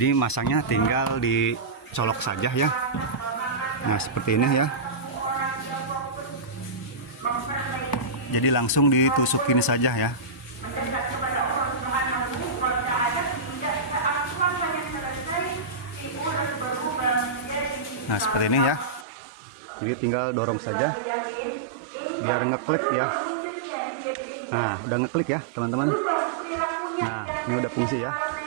masangnya tinggal dicolok saja ya. Nah seperti ini ya. Jadi langsung ditusukin saja ya. Nah seperti ini ya. Jadi tinggal dorong saja biar ngeklik ya. Nah udah ngeklik ya teman-teman. Nah ini udah fungsi ya.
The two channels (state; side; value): drops out; left; at 19.1 s